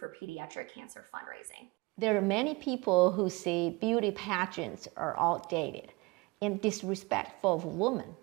for pediatric cancer fundraising. There are many people who say beauty pageants are outdated and disrespectful of women.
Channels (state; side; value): quieter; left; 25.5 dB